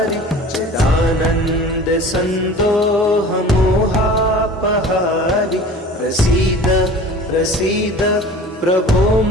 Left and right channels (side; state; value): both; normal; correlation 0.42